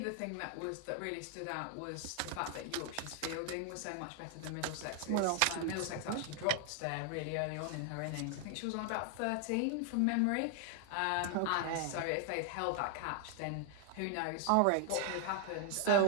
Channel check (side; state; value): both; different; correlation 0.00